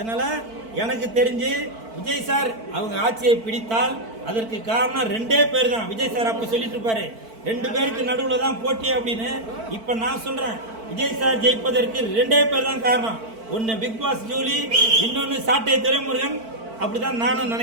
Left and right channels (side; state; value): left; late; 4.5 ms